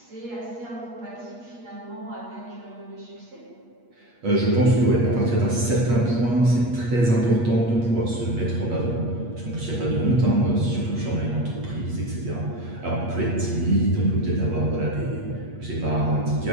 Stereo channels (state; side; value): late; left; 8.4 ms